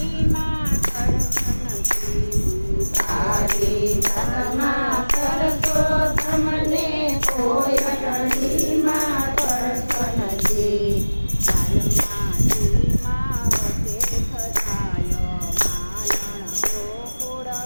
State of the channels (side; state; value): both; inverted; correlation -1.00